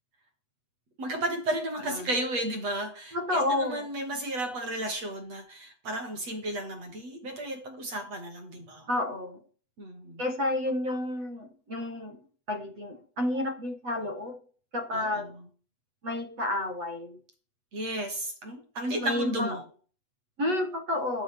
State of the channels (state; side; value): late; left; 8.1 ms